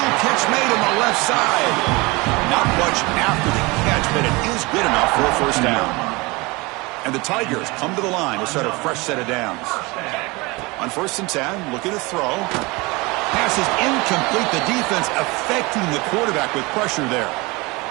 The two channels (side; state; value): left; quieter; 24.6 dB